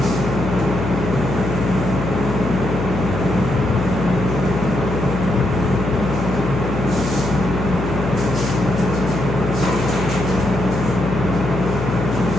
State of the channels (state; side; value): noise; left; hum, 4 dB below the sound